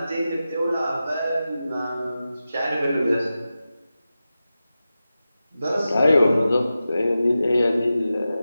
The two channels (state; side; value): inverted; both; correlation -0.93